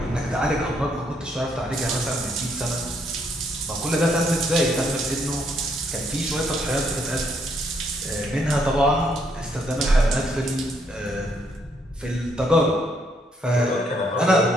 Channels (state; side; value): normal; both; correlation 0.72